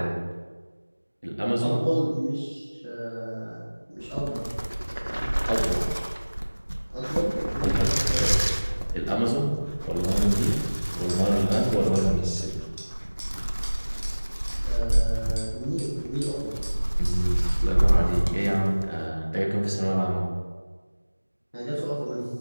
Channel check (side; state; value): both; inverted; correlation -1.00